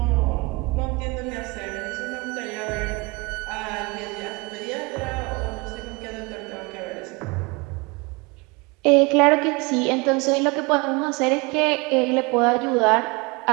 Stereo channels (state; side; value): quieter; left; 27.0 dB